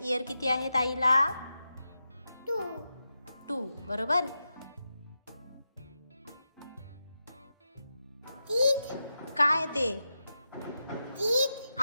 किती आहेत आईला? 2 2. बरोबर. teeth काय ते? teeth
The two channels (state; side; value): inverted; both; correlation -0.89